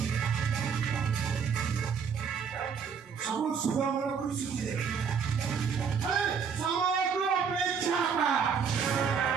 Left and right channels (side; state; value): left; quieter; 6.5 dB